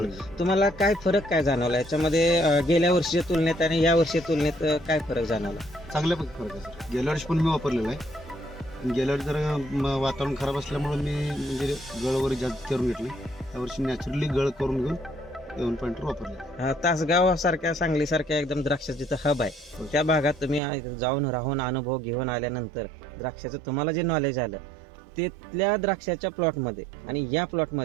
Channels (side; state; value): left; drops out; at 20.6 s